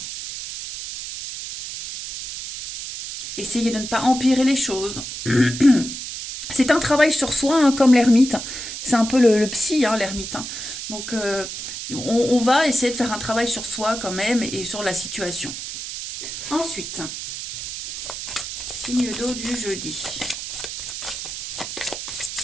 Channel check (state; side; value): noise; right; hiss, 7 dB below the sound